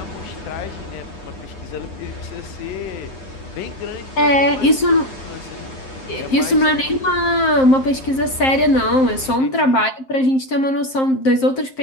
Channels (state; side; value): late; right; 7.6 ms